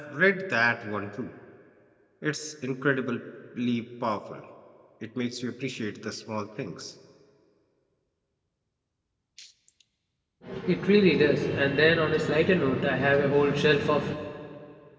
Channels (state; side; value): identical; both; correlation 1.00